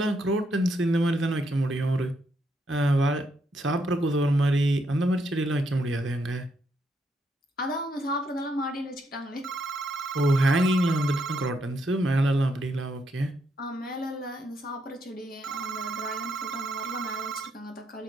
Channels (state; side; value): normal; both; correlation 0.77